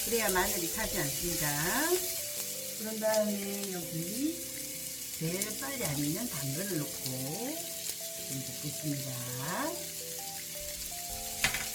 그래야 마늘이 타지 않습니다. 그런 다음에 여기 제일 빨리 안 익는 당근을 넣고 좀 볶겠습니다.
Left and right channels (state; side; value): identical; both; correlation 1.00